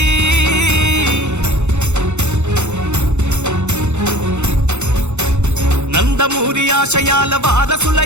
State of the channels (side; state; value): left; late; 0.83 ms